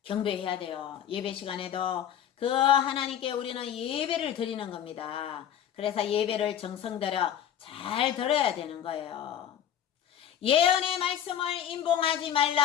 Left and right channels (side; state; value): right; quieter; 9.8 dB